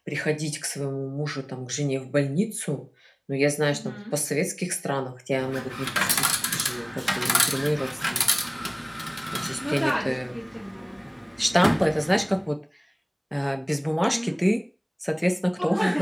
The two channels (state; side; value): identical; both; correlation 1.00